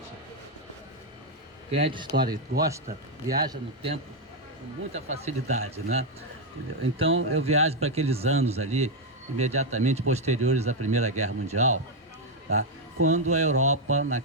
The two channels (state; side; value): normal; both; correlation 0.02